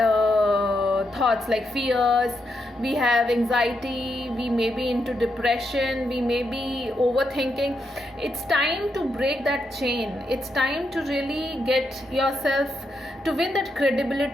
thoughts like fears. We have anxiety. We may be into depression. We may be overthinking. It's time to break that chain. It's time to really get yourself to win that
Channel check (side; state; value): both; normal; correlation 0.82